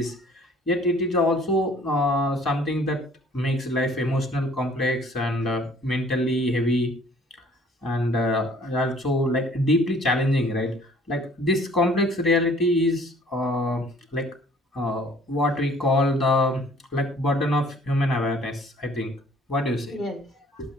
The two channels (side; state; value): both; normal; correlation 0.55